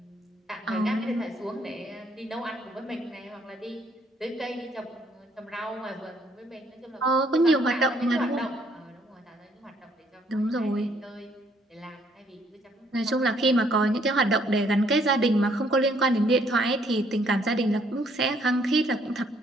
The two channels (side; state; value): both; normal; correlation 0.67